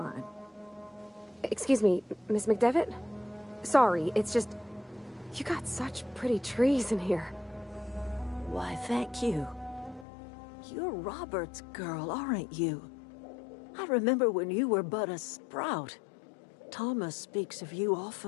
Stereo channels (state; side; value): drops out; right; at 10.1 s